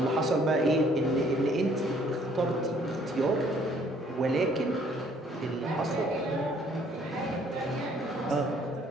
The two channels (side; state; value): both; normal; correlation 0.62